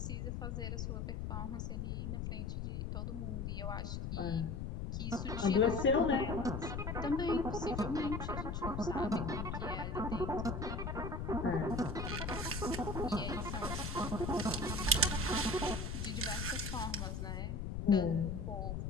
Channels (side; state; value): left; noise; rumble, 3 dB below the sound